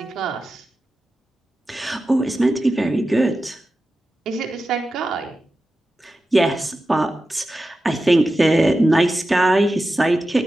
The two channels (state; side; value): normal; both; correlation 0.93